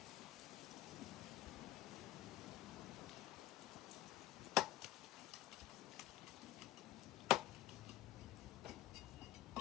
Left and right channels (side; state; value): right; quieter; 13.7 dB